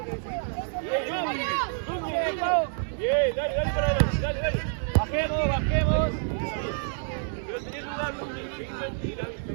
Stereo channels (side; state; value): left; silent; 59 dB below the other